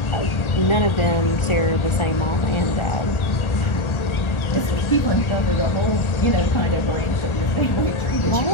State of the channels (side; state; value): right; late; 1.4 ms